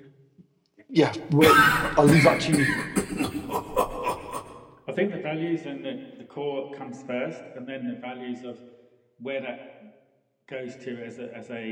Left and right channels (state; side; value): identical; both; correlation 1.00